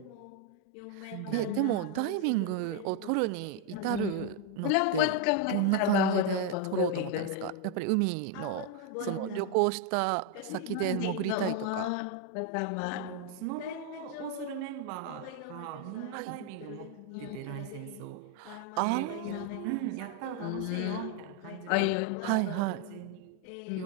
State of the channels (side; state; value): both; different; correlation 0.01